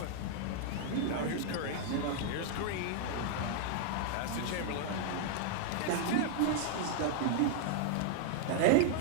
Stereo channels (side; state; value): both; different; correlation -0.01